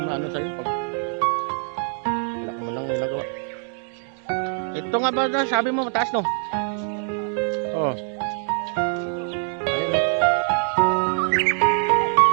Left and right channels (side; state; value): left; silent; 57 dB below the other